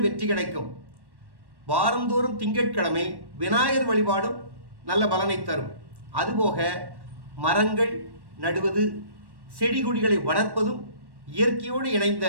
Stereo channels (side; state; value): left; late; 1.1 ms